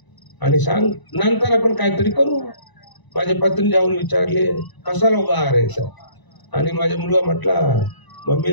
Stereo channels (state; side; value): late; right; 1.0 ms